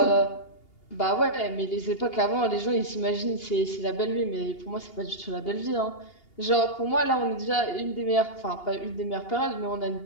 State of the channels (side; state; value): right; late; 2.8 ms